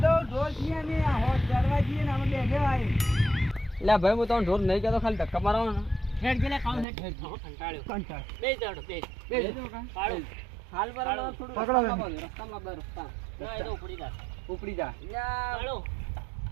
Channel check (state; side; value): drops out; left; at 6.9 s